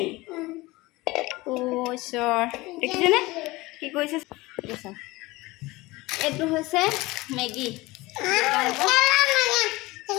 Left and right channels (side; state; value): right; quieter; 21.0 dB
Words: অ' ঈশ্বৰ, দেখিছেনে কি কৰিছে? এইটো হৈছে মেগী।